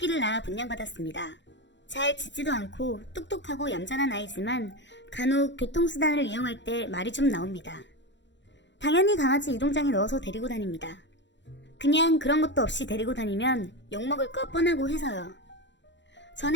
낳아 분양받았습니다. 잘 짖지도 않고 똑똑하고 얌전한 아이지만 간혹 교통수단을 이용할 때 말이 좀 나옵니다. 당연히 강아지 이동장에 넣어서 데리고 다닙니다. 그냥 그런 것도 없이 데리고 다니면 욕먹을 거 뻔하고 해서요.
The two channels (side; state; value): right; late; 0.52 ms